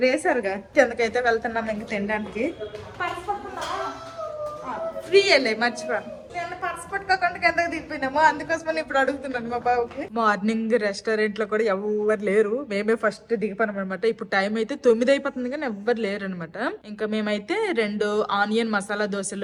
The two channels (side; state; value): both; identical; correlation 1.00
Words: వేసారుగా. కిందకైతే వెళ్తున్నాం ఇంక తినడానికి. ఫ్రీ వెళ్ళే మర్చిపోయాను, నేను పర్స్ పట్టుకోకుండా కిందకి దిగిపోయినాము. అందుకోసమని ఇప్పుడు అడుగుతున్నాను మా బాబుకి. మార్నింగ్ రెస్టారెంట్ లో కూడా ఎవరు లేరు, మేమే ఫస్ట్ దిగిపోయాం అనమాట. ఇప్పుడు టైం అయితే 9 అయిపోతుంది కానీ ఎవ్వరు లేరు అనమాట. ఇంకా మేమైతే 2 ఆనియన్ మసాలా